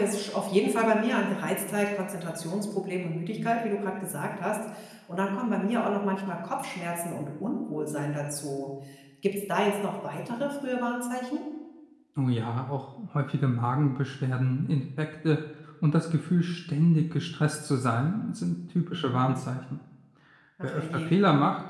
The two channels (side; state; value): both; identical; correlation 1.00